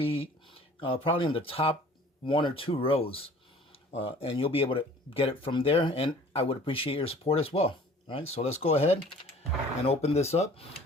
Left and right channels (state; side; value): normal; both; correlation 0.49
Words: probably in the top 1 or 2 rows. And you'll be able to get it from there, and I would appreciate your support as well. All right, so let's go ahead and open this up.